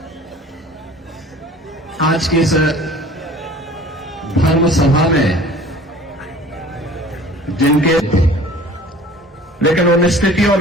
आज की इस धर्म सभा में जिनके लेकिन उन स्थितियों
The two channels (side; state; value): both; normal; correlation 0.47